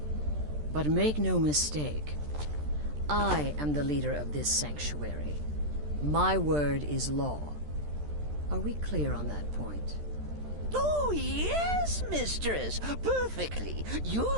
But make no mistake, I am the leader of this sanctuary. My word is law. Are we clear on that point? Oh, yes, mistress! Perfectly!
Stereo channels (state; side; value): late; left; 13 ms